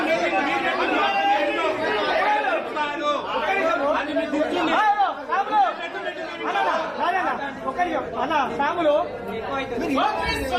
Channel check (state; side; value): identical; both; correlation 1.00